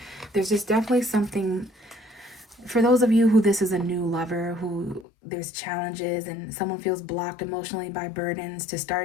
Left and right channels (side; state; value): right; drops out; at 5.1 s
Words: There's just definitely something, for those of you who this is a new lover, who there's challenges and someone feels blocked emotionally by burdens, to